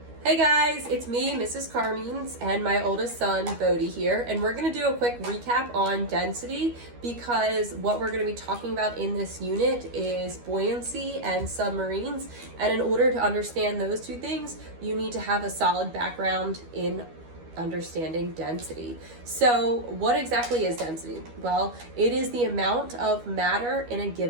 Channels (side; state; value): left; late; 12 ms